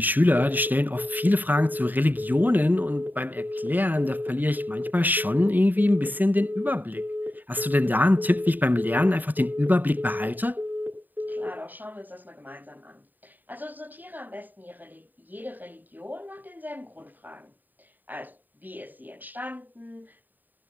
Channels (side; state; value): left; late; 0.087 ms